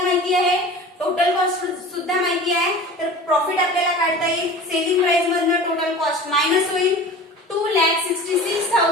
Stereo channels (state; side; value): normal; both; correlation 0.38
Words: माहिती आहे, टोटल कॉस्ट सुद्धा माहिती आहे. तर प्रॉफिट आपल्याला काढता येईल सेलिंग प्राइस मधनं टोटल कॉस्ट मायनस होईल